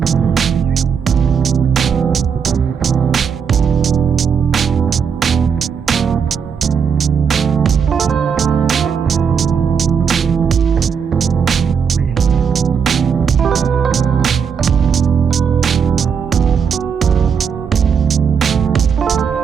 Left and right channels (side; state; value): left; quieter; 6.8 dB